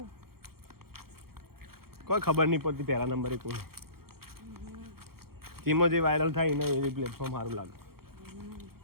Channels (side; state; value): left; late; 0.94 ms